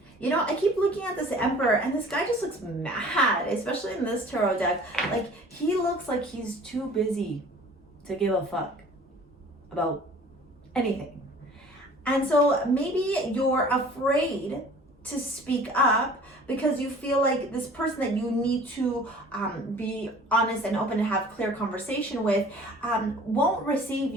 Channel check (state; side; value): normal; both; correlation 0.48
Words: You know, I keep looking at this Emperor, and this guy just looks mad, especially in this tarot deck. Like, he looks like he's too busy to give a fuck about anything. And so maybe you're afraid to speak up because you feel like this person that you need to be honest and open and have clear conversation with won't receive